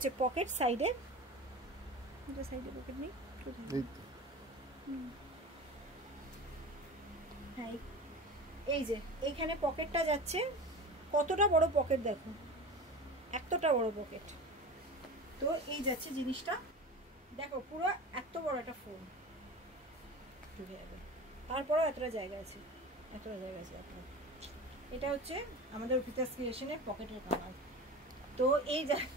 পকেট সাইডে, সাইডে পকেট নেই, হ্যাঁ এই যে এইখানে পকেটটা যাচ্ছে, কতটা বড় পকেট দেখো, এতটা বড় পকেট। তো এই যাচ্ছে জিনিসটা, দেখো পুরো এত বড় একটা ফোন ঢুকে যাবে, তারপরেও এতটা জায়গা আছে, এতটা জায়গা আছে। এটা হচ্ছে আমাদের অর্পিতাস ক্রিয়েশনের পকেটের কালার। তো এই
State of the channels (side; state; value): both; normal; correlation 0.32